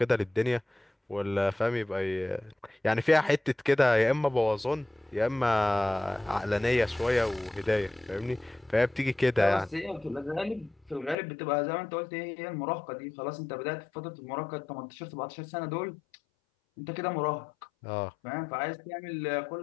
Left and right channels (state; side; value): drops out; right; at 11.2 s